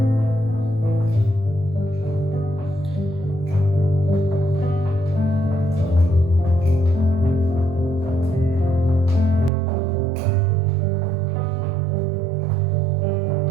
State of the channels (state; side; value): drops out; left; at 9.5 s